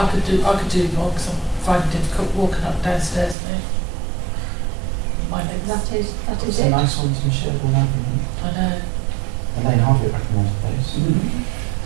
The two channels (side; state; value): left; drops out; at 3.4 s